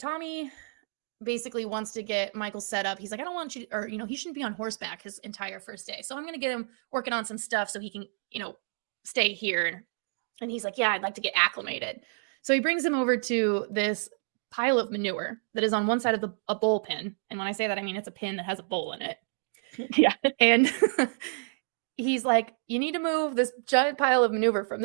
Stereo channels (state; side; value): silent; left; digital silence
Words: Tommy basically wants to get Michael set up. He's like, I don't want you, or, he shouldn't be on horseback his entire first day. So I'm going to get him working on some stuff so he can, stay here. And he's like, yeah, I'd like to get acclimated. So he brings him over to this pile of manure that is on one side of a bowl pin. And when I say that, I mean, it's a pin that has a bowl in it. Yeah. And he's like, you need to move this giant pile of manure from